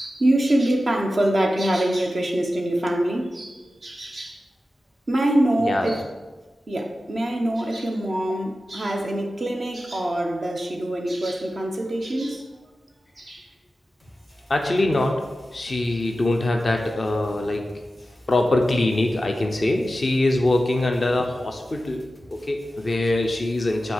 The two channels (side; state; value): both; normal; correlation 0.93